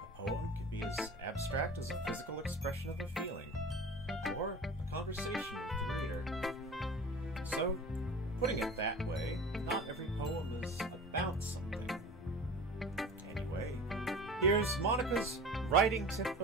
poem can be as abstract as a physical expression of a feeling, or a conversation with the reader. So, putting it that way, not every poem is about something. Anyway, here's Monica's writing tip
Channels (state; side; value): normal; both; correlation 0.37